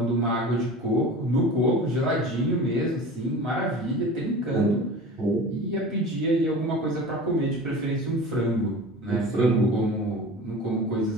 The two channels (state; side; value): normal; both; correlation 0.36